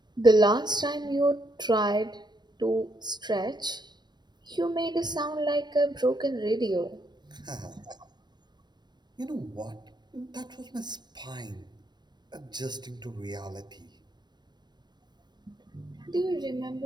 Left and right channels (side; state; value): left; late; 0.21 ms